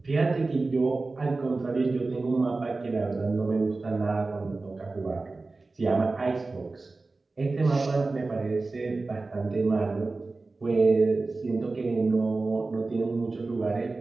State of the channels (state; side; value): quieter; left; 3.5 dB